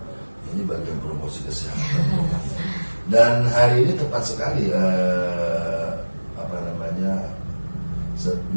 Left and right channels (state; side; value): inverted; both; correlation -1.00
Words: Ini bagian promosi kesehatan. Dan hari ini tepat sekali